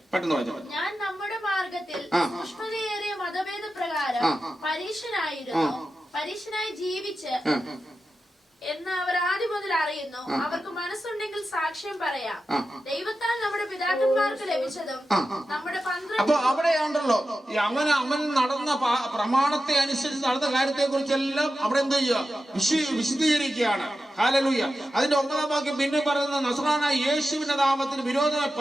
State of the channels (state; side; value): normal; both; correlation 0.92